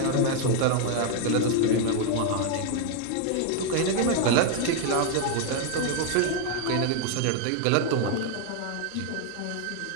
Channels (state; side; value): different; both; correlation 0.00